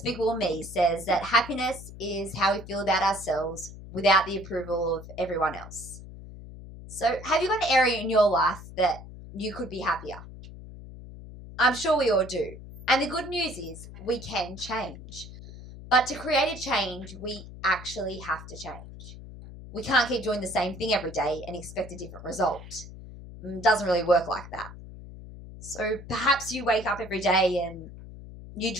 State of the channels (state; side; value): noise; left; hum, 14 dB below the sound